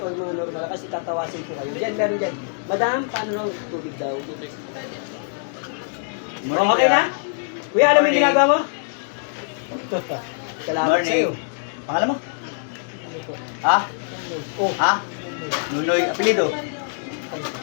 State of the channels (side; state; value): right; silent; 63 dB below the other